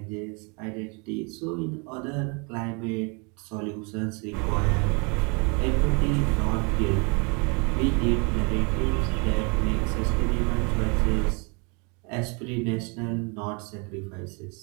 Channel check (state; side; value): quieter; left; 33.0 dB